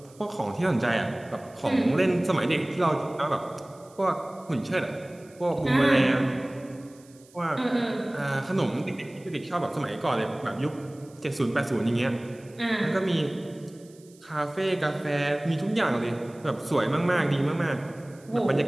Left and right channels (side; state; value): right; noise; hiss, 27 dB below the sound